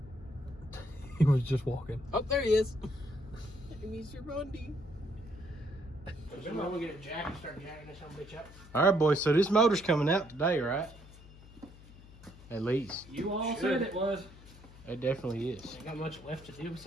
He was just walking. Oh, there he is. Mr. Bundy. I'm gonna get a jack and start jacking this bitch up. All right, boys. So this motor's coming out today, right? At least. You all said it was. It definitely is. Ain't got much left to do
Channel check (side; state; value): left; noise; hum, 20 dB below the sound